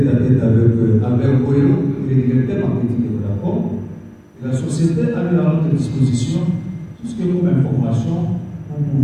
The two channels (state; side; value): identical; both; correlation 1.00